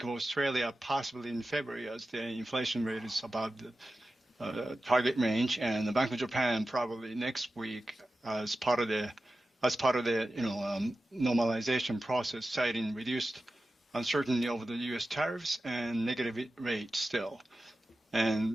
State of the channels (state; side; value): normal; both; correlation 0.94